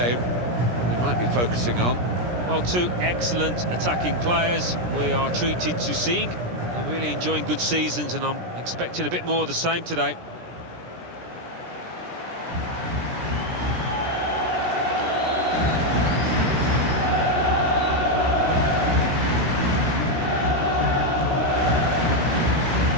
we might be focusing on. Well, two excellent attacking players we are treated to seeing. They're really enjoying good seasons, and I'm expecting a bit more of the same today.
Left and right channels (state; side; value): late; left; 17 ms